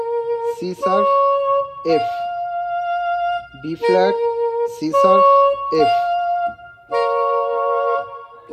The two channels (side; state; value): both; identical; correlation 1.00